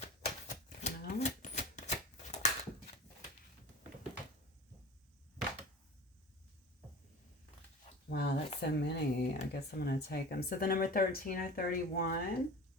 Well, wow, that's so many. I guess I'm going to take them. So the number 13 or 31,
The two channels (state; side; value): normal; both; correlation 0.35